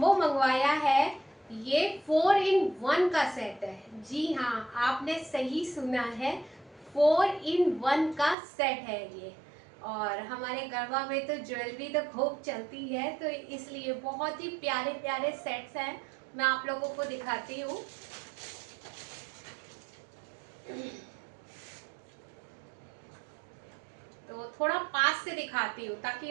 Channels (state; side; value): drops out; left; at 8.3 s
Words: मंगवाया है। ये 4 in 1 का सेट है। जी हाँ, आपने सही सुना है, 4 in 1 का सेट है ये। और हमारे गरबा में तो ज्वेलरी तो खूब चलती है, तो इसलिए बहुत ही प्यारे प्यारे सेट्स हैं। मैं आप लोगों को दिखाती हूँ। तो थोड़ा पास से दिखाती हूँ ताकि